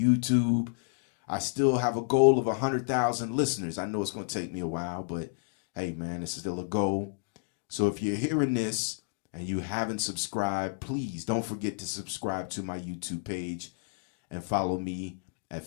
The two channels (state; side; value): silent; right; digital silence